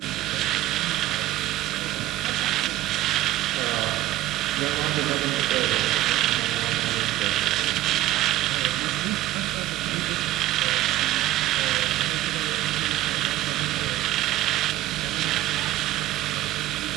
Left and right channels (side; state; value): left; quieter; 15.1 dB